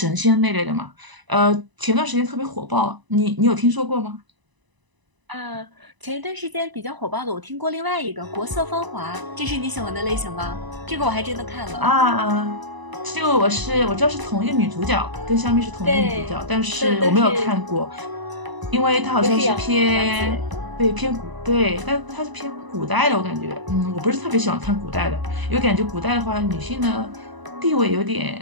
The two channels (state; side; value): late; left; 1.0 ms